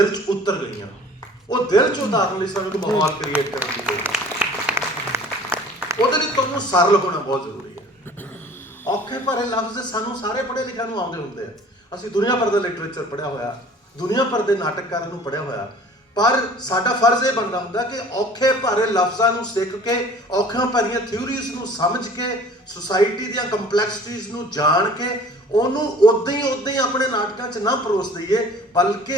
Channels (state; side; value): normal; both; correlation 0.48